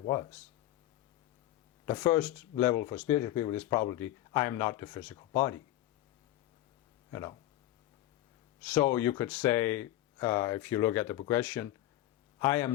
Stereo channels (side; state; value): right; quieter; 14.7 dB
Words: The first level for spiritual people is probably, I am not the physical body. So you could say, if you look at the progression, I